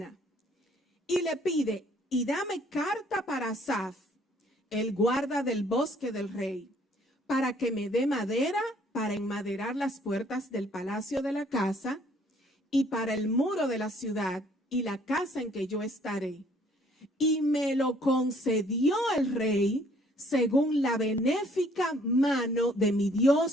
Y le pide, y dame carta para Asaf, el guarda del bosque del rey, para que me dé madera para enmaderar las puertas del palacio de la casa y para el muro de la ciudad y la casa en que yo estaré. Y me lo concedió el rey según la benéfica mano de mi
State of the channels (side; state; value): both; normal; correlation 0.61